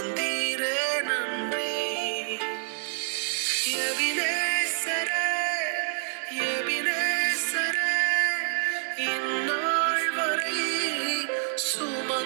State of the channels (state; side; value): silent; left; digital silence